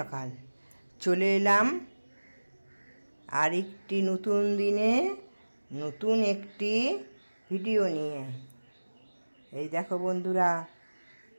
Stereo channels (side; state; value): both; inverted; correlation -1.00